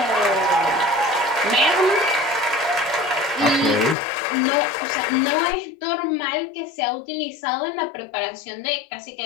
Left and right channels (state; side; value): drops out; right; at 4.0 s